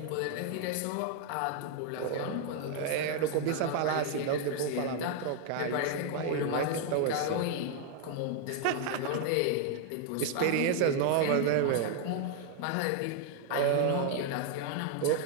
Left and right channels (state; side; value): different; both; correlation 0.00